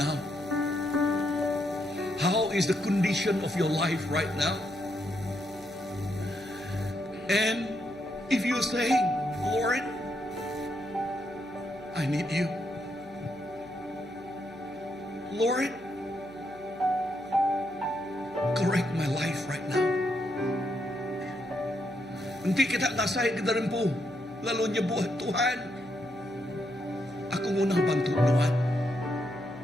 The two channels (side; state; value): right; noise; hum, 24 dB below the sound